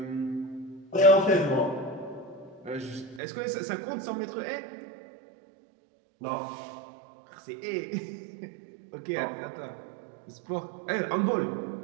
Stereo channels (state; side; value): drops out; left; at 3.2 s